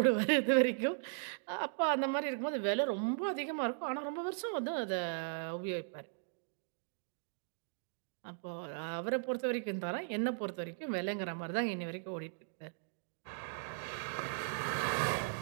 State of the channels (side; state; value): left; silent; digital silence